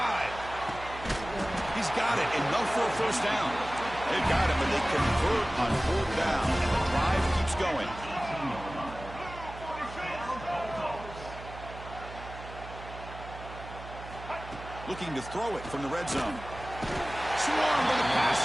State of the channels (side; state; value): right; noise; hum, 13 dB below the sound